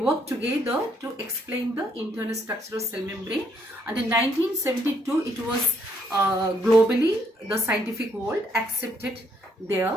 together to explain the internal structure of cell membrane, and in 1972 it was globally the scientific world accepted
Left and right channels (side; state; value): both; normal; correlation 0.71